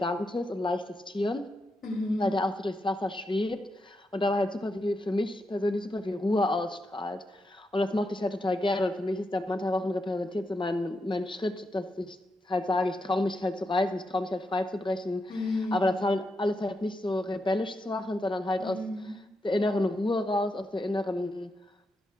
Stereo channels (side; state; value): both; normal; correlation 0.84